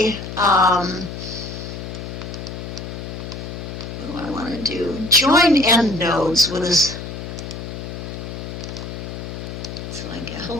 what do I want to do? Join end nodes with this. So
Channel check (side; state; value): left; noise; hum, 8 dB below the sound